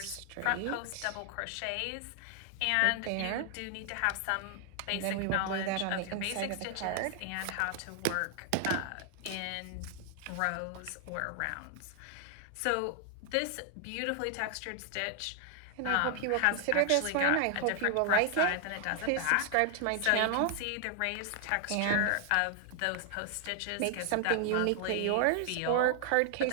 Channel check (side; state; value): both; different; correlation 0.00